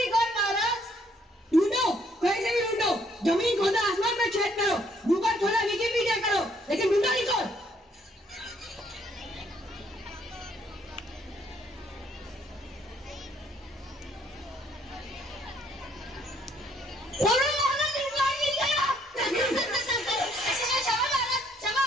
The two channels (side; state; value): both; normal; correlation 0.66